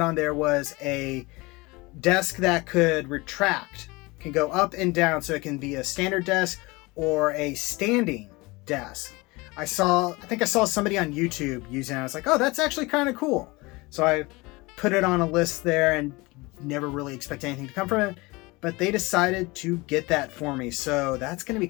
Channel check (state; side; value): quieter; right; 23.7 dB